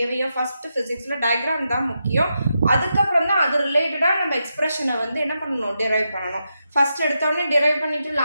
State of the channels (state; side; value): inverted; both; correlation -0.86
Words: ஃபர்ஸ்ட் ஃபிசிக்ஸில் டயக்ராம் தான் முக்கியம். அதுக்கப்புறம் தான் அது ரிலேட்டடாக நம்ம எக்ஸ்பிரஷனை வந்து என்ன பண்ணணும், டிரைவ் பண்ணணும். ஃபர்ஸ்ட் எடுத்தோடனே டிரைவ் பண்ணிட்டு